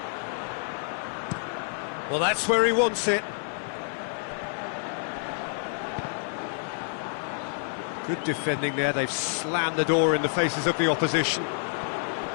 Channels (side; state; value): right; silent; digital silence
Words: Well, that's where he wants it. Good defending there. They've slammed the door in the faces of the opposition.